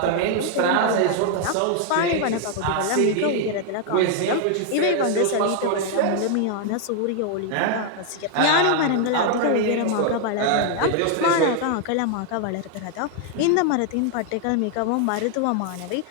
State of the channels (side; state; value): both; different; correlation 0.00